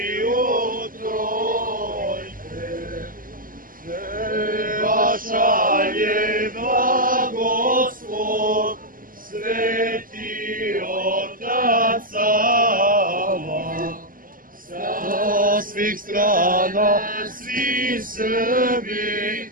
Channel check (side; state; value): left; late; 0.41 ms